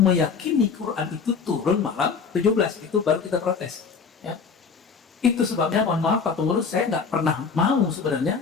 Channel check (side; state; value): right; quieter; 5.6 dB